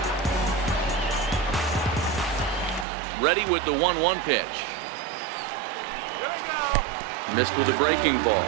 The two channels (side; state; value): left; drops out; at 2.9 s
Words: Ready with the 1-1 pitch. Here we go. Missed with a breaking ball.